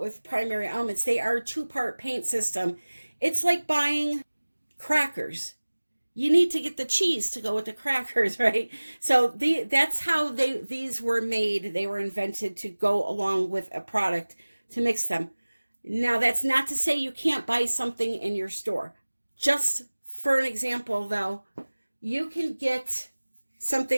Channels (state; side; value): inverted; both; correlation -1.00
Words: primary elements. They are a two-part paint system. It's like buying crackers. You need to get the cheese to go with the crackers, right? So that's how these were made. They were invented to go along with a product to mix them. Now, that's not to say you can't buy something in your store. Just for an example, though, you can get